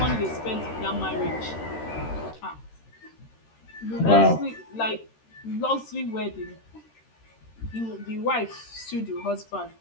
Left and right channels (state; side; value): late; right; 13 ms